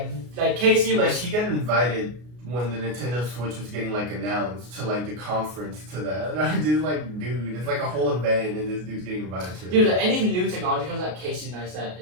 Casey Like was. he got invited when the Nintendo Switch was getting like announced to like the conference to that. And I'm just like, dude, it's like a whole event, and this dude's getting invited to it. Dude, any new technology comes out, Casey Neistat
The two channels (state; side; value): late; left; 33 ms